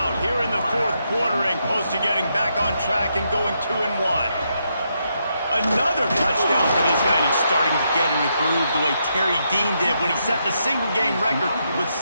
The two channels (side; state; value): both; inverted; correlation -0.80